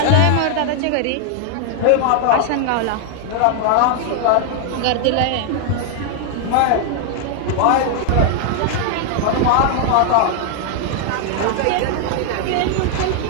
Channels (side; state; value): both; different; correlation 0.00